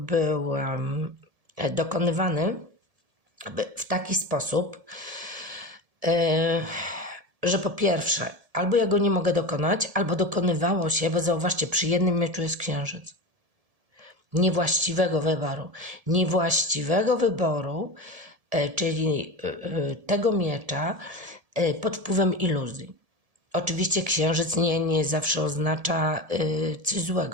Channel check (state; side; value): late; left; 1.7 ms